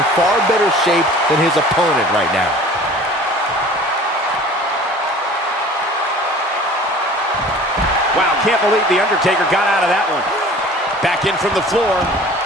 far better shape than his opponent right now. Wow, can't believe The Undertaker got out of that one. Back in from the floor.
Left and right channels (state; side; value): normal; both; correlation 0.45